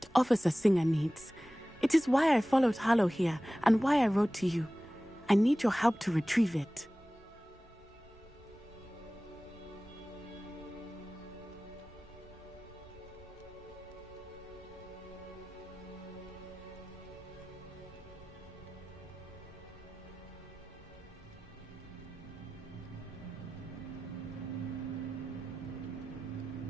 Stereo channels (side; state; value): both; normal; correlation 0.97